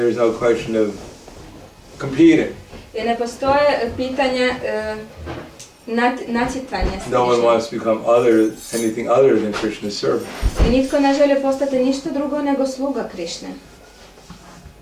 no question of competing. I ne postoje pitanje natjecanja s No one Krišnom. wants to become anything other than Krishna's servant. I nitko ne želi postati ništa drugo nego sluga Krišne.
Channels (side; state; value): both; identical; correlation 1.00